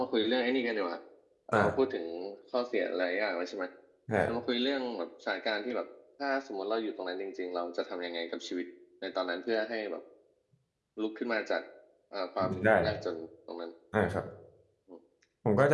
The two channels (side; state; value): both; identical; correlation 1.00